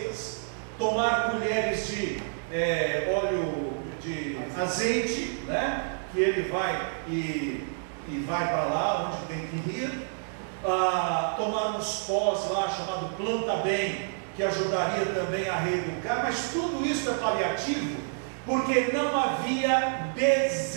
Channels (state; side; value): silent; left; digital silence